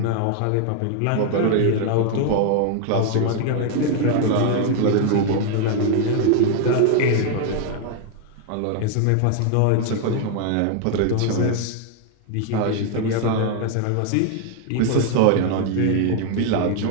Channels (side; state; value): both; different; correlation 0.00